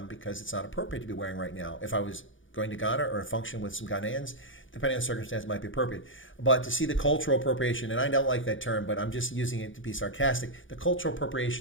because it's not appropriate to be wearing right now. If I was going to Ghana or a function with some Ghanaians, depending on the circumstance, it might be appropriate. But to see the cultural appropriation, and I don't like that term, but I'm just using it to be sarcastic, the cultural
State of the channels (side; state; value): right; late; 0.57 ms